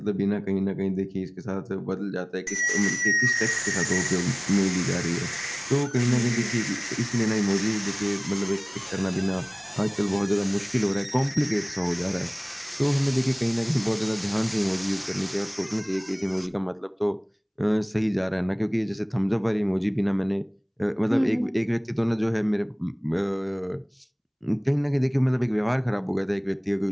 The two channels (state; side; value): identical; both; correlation 1.00